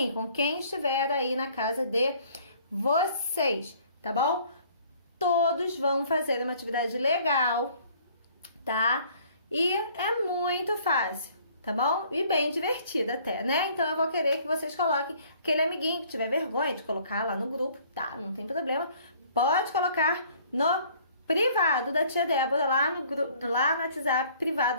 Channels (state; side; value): inverted; both; correlation -0.57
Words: com quem estiver aí na casa de vocês, tá bom? Todos vão fazer uma atividade legal, tá? E é muito fácil, tá bom? E bem divertida até, né? Então eu vou querer que vocês coloquem aquele amiguinho que tiver vergonha de colocar lá no grupo, tá? Não tem problema. Pode colocar no privado da tia Débora, lá no WhatsApp privado